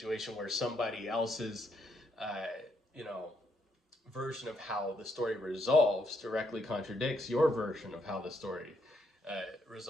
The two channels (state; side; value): normal; both; correlation 0.76